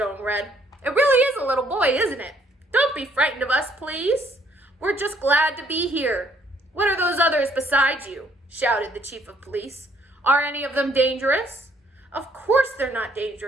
red. It really is a little boy, isn't it? Don't be frightened of us, please. We're just glad to be here. What are those others beside you? Shouted the chief of police. Are any of them dangerous? Of course they're not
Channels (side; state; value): both; normal; correlation 0.66